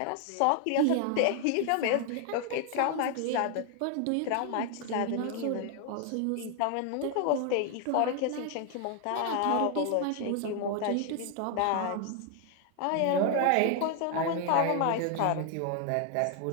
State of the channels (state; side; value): different; both; correlation 0.00